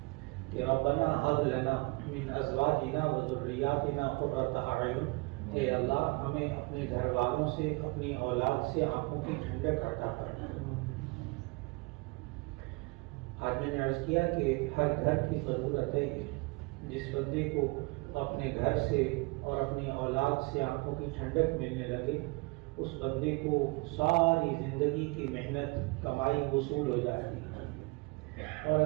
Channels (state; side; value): quieter; left; 26.6 dB